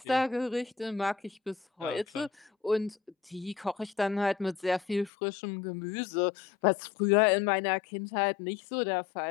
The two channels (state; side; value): drops out; right; at 5.1 s